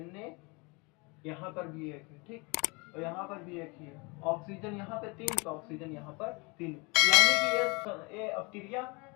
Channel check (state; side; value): quieter; right; 28.6 dB